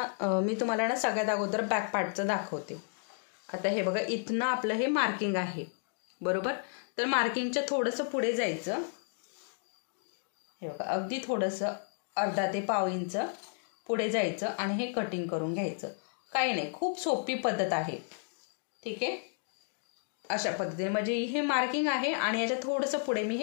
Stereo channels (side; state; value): right; silent; 56 dB below the other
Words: मी तुम्हाला ना सगळ्यात अगोदर बॅक पार्टचं दाखवते. आता हे बघा इथनं आपलं हे मार्किंग आहे, बरोबर. तर मार्किंगच्या थोडंसं पुढे जायचं. हे बघा अगदी थोडंसं अर्धा ते पाव इंच पुढे जायचं आणि हे कटिंग करून घ्यायचं. काही नाही, खूप सोपी पद्धत आहे. ठीक आहे. अशा पद्धतीने म्हणजे हे मार्किंग आहे आणि याच्या थोडंसं पुढे मी